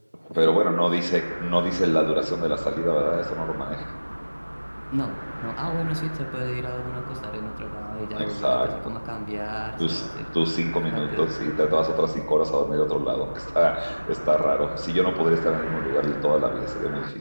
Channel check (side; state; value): both; inverted; correlation -1.00